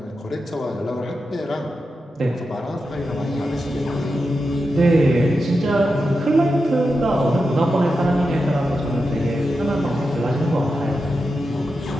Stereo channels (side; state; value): both; normal; correlation 0.89